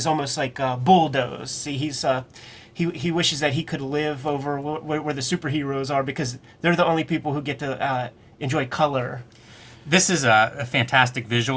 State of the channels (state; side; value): identical; both; correlation 1.00